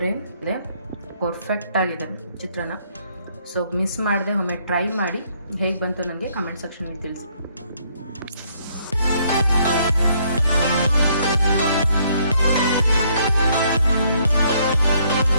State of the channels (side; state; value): both; inverted; correlation -0.68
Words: ಪರ್ಫೆಕ್ಟ್ ಆಗಿದೆ ಚಿತ್ರಾನ್ನ. ಸೊ ಮಿಸ್ ಮಾಡದೆ ಒಮ್ಮೆ ಟ್ರೈ ಮಾಡಿ, ಹೇಗೆ ಬಂತು ನನಗೆ ಕಮೆಂಟ್ ಸೆಕ್ಷನಲ್ಲಿ ತಿಳಿಸಿ.